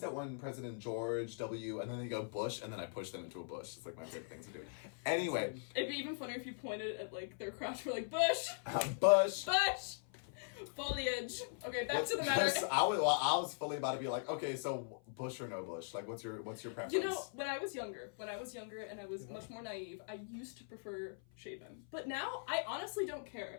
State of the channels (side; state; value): right; silent; 51 dB below the other